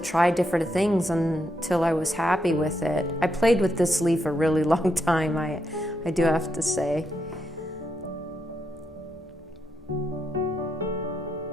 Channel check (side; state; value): both; normal; correlation 0.81